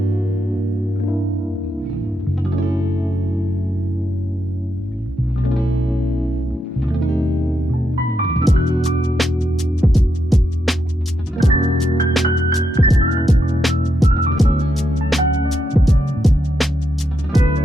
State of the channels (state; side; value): normal; both; correlation 0.82